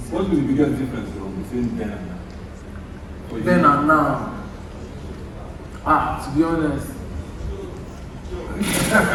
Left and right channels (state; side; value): identical; both; correlation 1.00